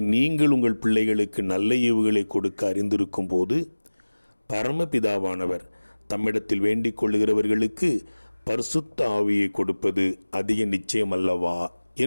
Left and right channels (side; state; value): both; inverted; correlation -1.00